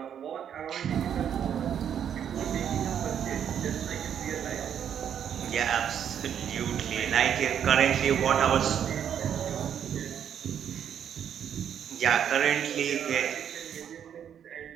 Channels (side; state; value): left; quieter; 8.9 dB